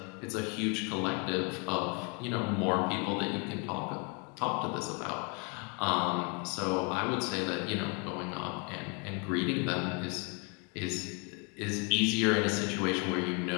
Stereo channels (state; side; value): quieter; right; 34.2 dB